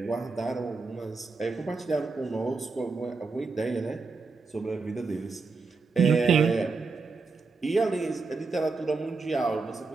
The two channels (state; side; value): quieter; left; 4.2 dB